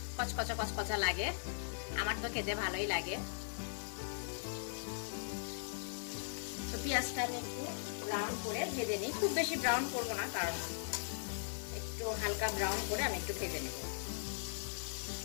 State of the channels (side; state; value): right; silent; 52 dB below the other